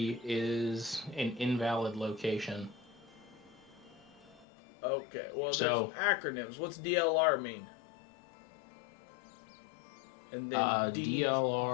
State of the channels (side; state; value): right; drops out; at 4.5 s